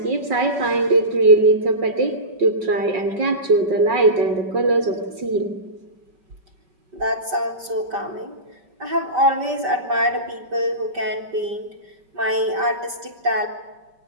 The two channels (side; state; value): left; late; 5.1 ms